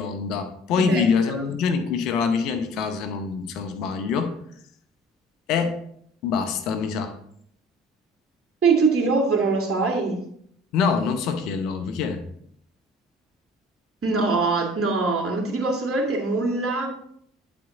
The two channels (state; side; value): normal; both; correlation 0.47